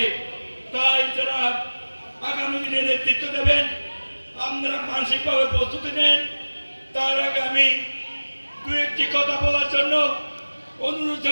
তাই যারা আগামী দিনে নেতৃত্ব দেবেন, আপনারা মানসিকভাবে প্রস্তুতি নেন। তার আগে আমি দু একটি কথা বলার জন্য অনুরোধ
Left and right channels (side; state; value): both; inverted; correlation -1.00